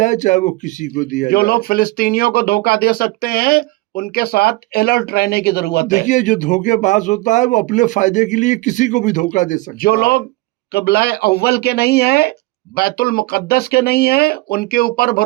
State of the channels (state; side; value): quieter; left; 20.9 dB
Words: चाहे वो किसी को दिया जो जाए। लोग फिलिस्तीनियों को धोखा दे सकते हैं उनके साथ अलर्ट रहने की जरूरत है। देखिए जो धोखेबाज होता है वो अपने फायदे के लिए किसी को भी धोखा दे सकता है। जो लोग क़िबला अव्वल के नहीं है, बैतुल मुक़द्दस के नहीं है, उनके ऊपर